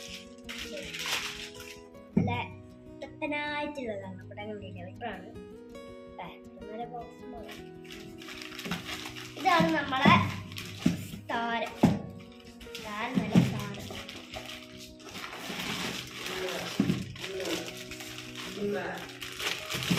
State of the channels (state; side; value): identical; both; correlation 1.00